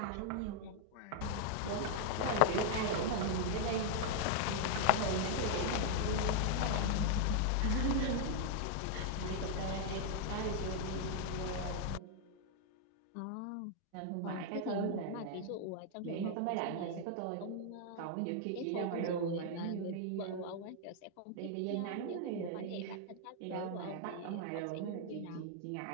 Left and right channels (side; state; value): both; different; correlation 0.00